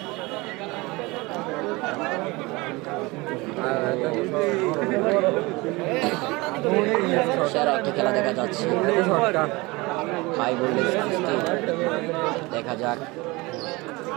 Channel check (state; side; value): quieter; left; 23.5 dB